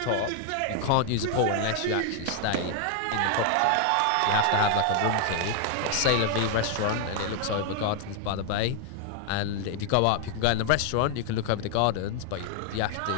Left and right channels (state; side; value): different; both; correlation 0.00